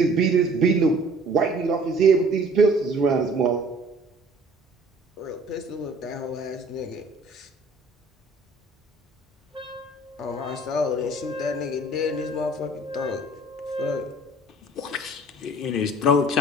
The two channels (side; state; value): both; normal; correlation 0.52